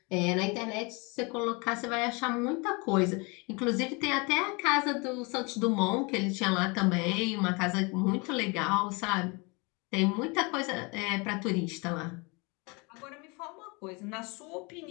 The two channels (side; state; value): right; quieter; 29.0 dB